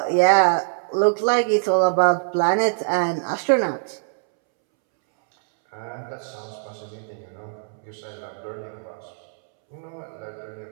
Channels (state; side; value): silent; left; 63 dB below the other